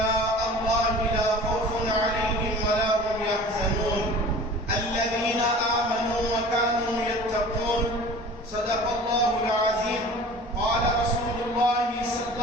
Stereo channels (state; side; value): normal; both; correlation 0.42